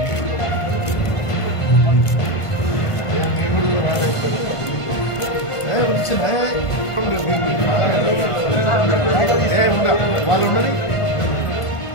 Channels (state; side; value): late; right; 1.5 ms